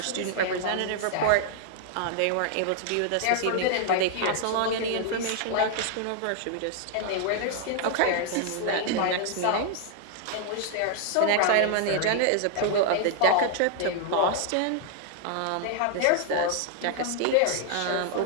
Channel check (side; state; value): both; different; correlation 0.00